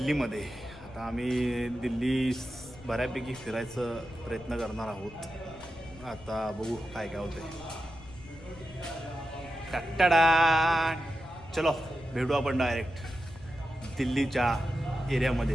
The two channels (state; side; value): noise; left; rumble, 19 dB below the sound